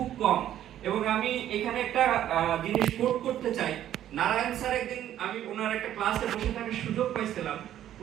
কম। এবং আমি এখানে একটা জিনিস কোট করতে চাই। নারায়ণ স্যার একদিন আমি ওনার একটা ক্লাসে বসে থাকার সুযোগ পাইছিলাম।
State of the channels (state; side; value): quieter; left; 11.6 dB